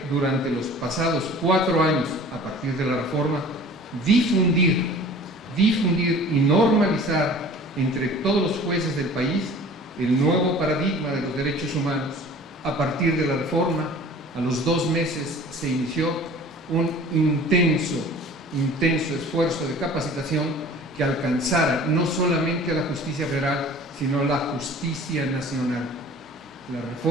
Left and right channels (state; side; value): normal; both; correlation 0.45